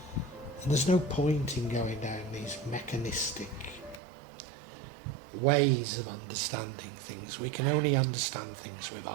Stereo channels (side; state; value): left; drops out; at 4.0 s